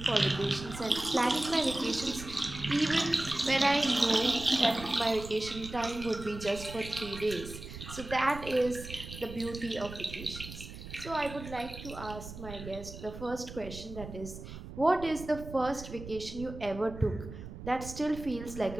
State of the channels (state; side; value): noise; right; rumble, 11 dB below the sound